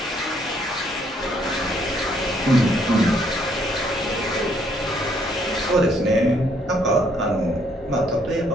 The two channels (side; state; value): both; normal; correlation 0.68